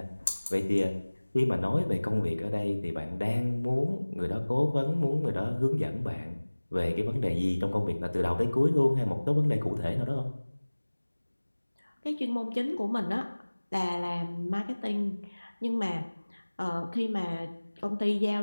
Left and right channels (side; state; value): both; inverted; correlation -1.00